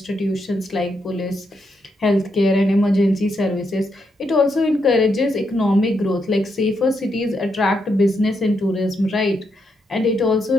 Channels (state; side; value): normal; both; correlation 0.80